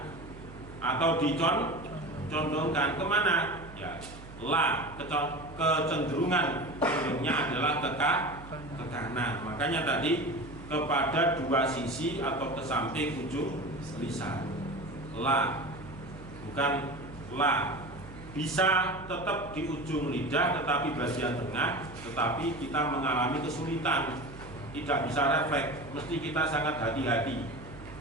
atau dicondongkan kemana? Ya, la, kecenderungan adalah ke kanan. Makanya tadi kepada dua sisi atau ke samping ujung lisan. La, bukan la. Bisa tetap di ujung lidah tetapi bagian tengah, tetapi kita mengalami kesulitan, tidak bisa refleks, mesti kita sangat hati-hati.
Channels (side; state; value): right; noise; hum, 16 dB below the sound